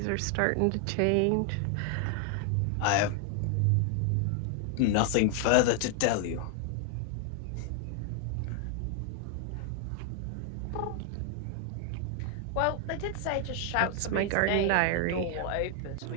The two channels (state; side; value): different; both; correlation 0.00